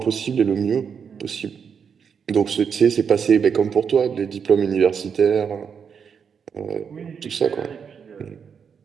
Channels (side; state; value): left; quieter; 6.8 dB